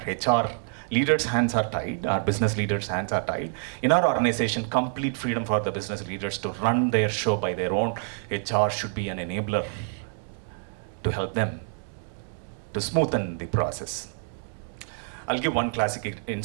HR leaders' hands are tied, our business leaders' hands are tied. In our organization, complete freedom for the business leaders to run their show by their own. HR should be an enabler to help them to smoothen the process. I'll give one classic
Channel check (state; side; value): silent; left; digital silence